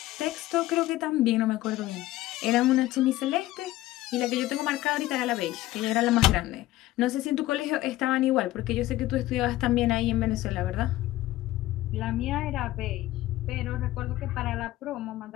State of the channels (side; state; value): right; quieter; 16.3 dB